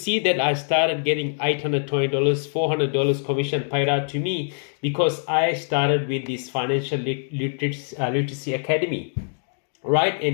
that I started getting $820, $400 commission paid out to me because I started with this Financial Literacy Academy, right?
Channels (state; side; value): silent; right; digital silence